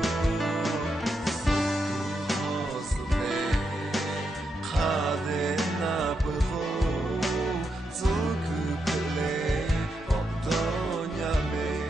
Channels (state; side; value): normal; both; correlation 0.83